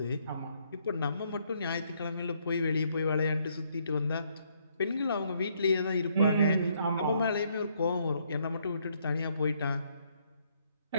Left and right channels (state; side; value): inverted; both; correlation -0.71